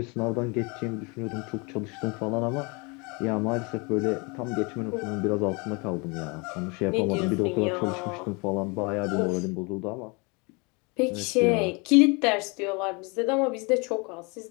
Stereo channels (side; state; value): right; quieter; 30.0 dB